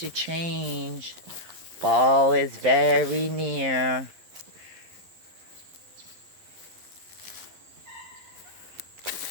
change. Fall is very near.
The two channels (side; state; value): left; late; 12 ms